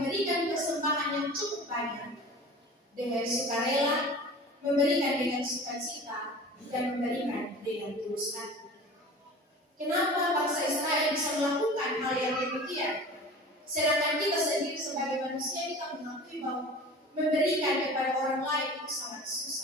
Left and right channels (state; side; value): normal; both; correlation 0.39